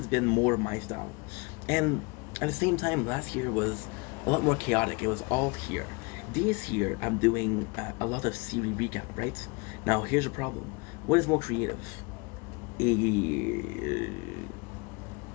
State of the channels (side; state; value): right; quieter; 28.4 dB